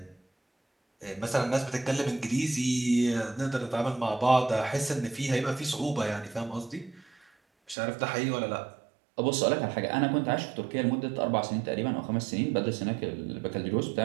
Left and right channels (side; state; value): left; drops out; at 7.8 s